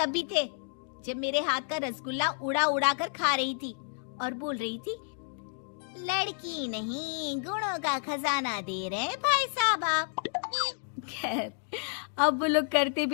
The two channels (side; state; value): right; silent; 57 dB below the other